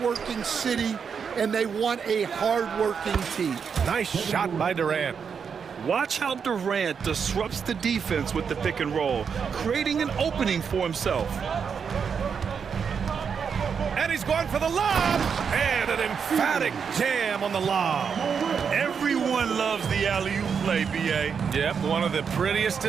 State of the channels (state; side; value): quieter; left; 6.5 dB